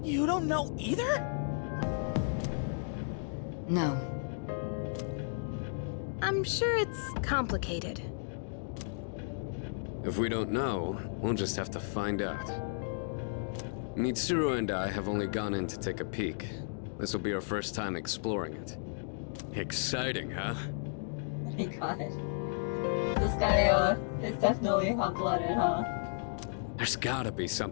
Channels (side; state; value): right; silent; digital silence